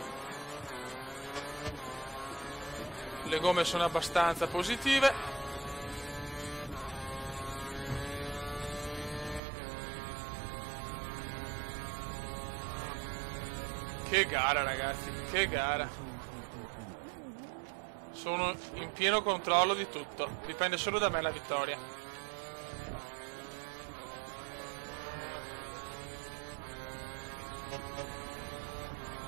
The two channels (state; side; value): drops out; left; at 9.4 s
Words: Le gomme sono abbastanza positive. Che gara, ragazzi, che gara. Sono in pieno controllo di tutto. Dipende solo da me la vittoria.